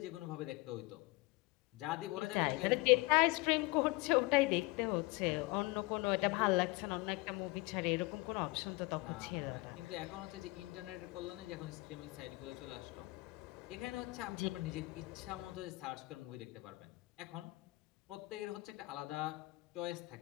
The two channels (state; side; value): quieter; right; 23.0 dB